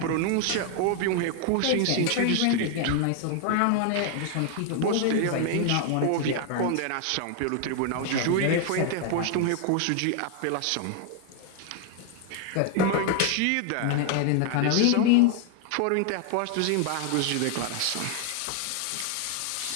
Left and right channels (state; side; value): different; both; correlation 0.00